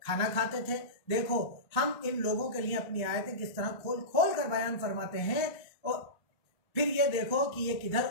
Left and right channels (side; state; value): right; late; 1.2 ms